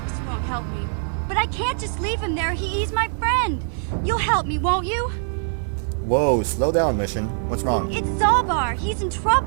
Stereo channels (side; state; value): left; silent; 63 dB below the other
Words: won't help me. But I can't just leave him there. He's my friend. You'll help me, won't you? Whoa, slow down, mission. What's wrong? It's Zalbar. He's in